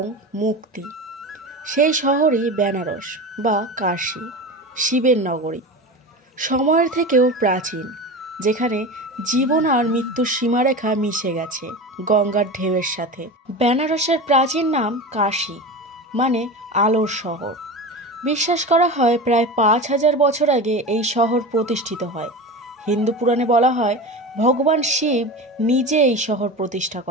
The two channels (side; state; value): both; normal; correlation 0.27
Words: মুক্তি। সেই শহরই বেনারস বা কাশী, শিবের নগরী। সময়ের থেকেও প্রাচীন, যেখানে জীবন আর মৃত্যুর সীমারেখা মিশে গেছে গঙ্গার ঢেউয়ের সাথে। বেনারসের প্রাচীন নাম কাশী, মানে আলোর শহর। বিশ্বাস করা হয় প্রায় 5,000 বছর আগে এই শহর প্রতিষ্ঠিত হয়। হিন্দু পুরাণে বলা হয় ভগবান শিব নিজে এই শহর প্রতিষ্ঠা